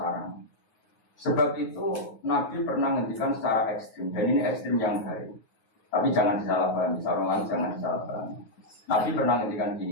Sebab itu Nabi pernah ngendikan secara ekstrim, dan ini ekstrim yang baik. Tapi jangan disalahpahami, orang jangan disalahpahami. Nabi pernah ngendikan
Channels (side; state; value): right; late; 9.5 ms